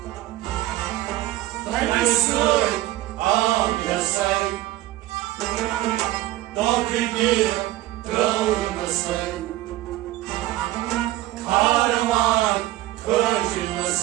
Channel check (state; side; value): quieter; left; 16.3 dB